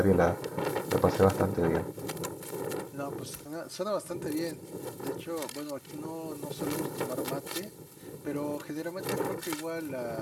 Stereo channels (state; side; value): identical; both; correlation 1.00